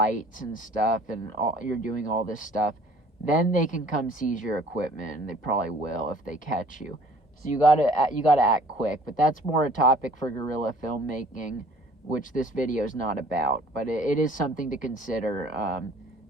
and stuff, and you're doing all this stuff, then they can come seize your equipment, and they probably will if they catch you. So you gotta act quick. But that's more a topic for guerrilla filmmaking, which this video is not about. But it is something to consider.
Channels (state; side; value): normal; both; correlation 0.54